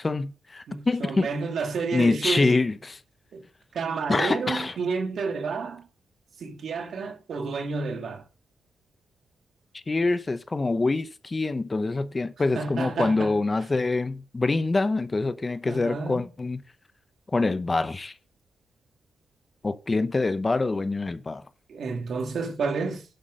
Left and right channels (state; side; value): normal; both; correlation 0.93